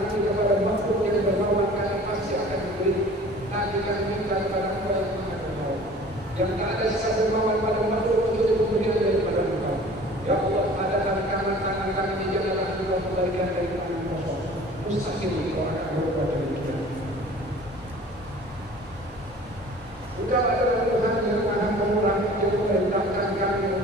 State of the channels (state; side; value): normal; both; correlation 0.46